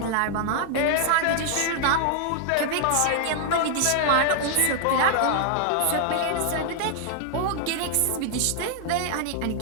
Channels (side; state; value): both; different; correlation 0.00